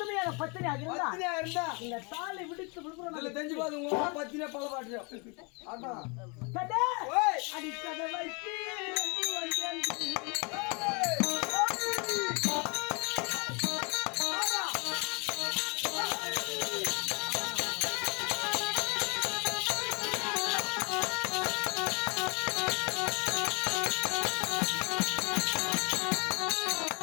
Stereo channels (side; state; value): right; quieter; 32.2 dB